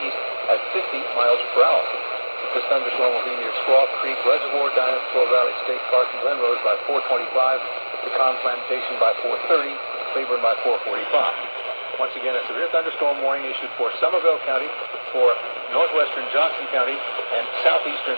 at 50 miles per hour. This thunderstorm will be near Squaw Creek Reservoir, Dinosaur Valley State Park, and Glenrose by 4:25, Pecan Plantation by 4:30, Claiborne by 4:45. Once again, a severe thunderstorm warning issued for Somervell County, for northwestern Johnson County, and southeastern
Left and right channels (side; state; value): both; inverted; correlation -1.00